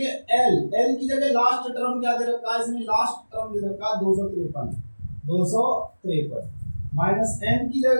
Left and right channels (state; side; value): inverted; both; correlation -1.00